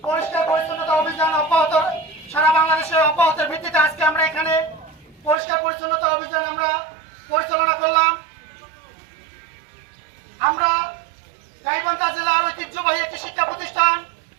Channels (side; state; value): left; drops out; at 5.4 s